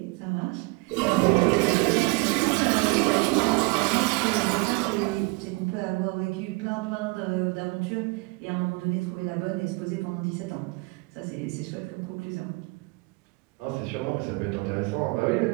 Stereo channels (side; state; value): left; quieter; 26.5 dB